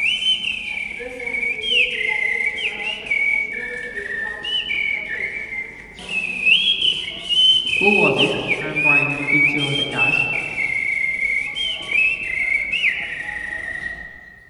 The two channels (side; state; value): both; identical; correlation 1.00